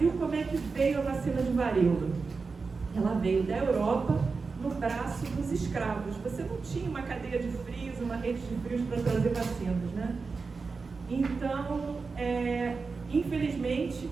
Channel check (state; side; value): quieter; left; 4.5 dB